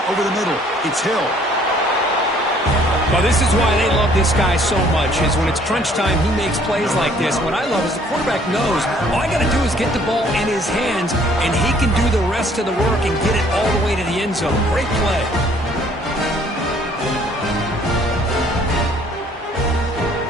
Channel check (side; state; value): both; normal; correlation 0.60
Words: over the middle. It's Hill. Well, this is why they love this guy so much, is when it's crunch time, he makes plays like this. What I love is the quarterback knows all I got to do is get the ball in his hands, and he can do the rest of the work and get it all the way to the end zone. Great play.